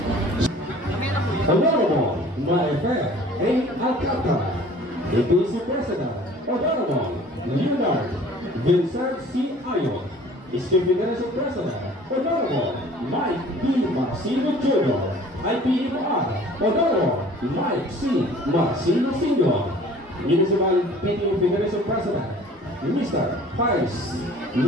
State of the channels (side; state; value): both; normal; correlation 0.49